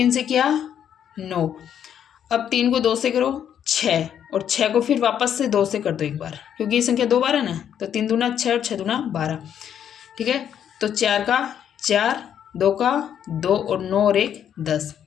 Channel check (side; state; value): right; quieter; 9.2 dB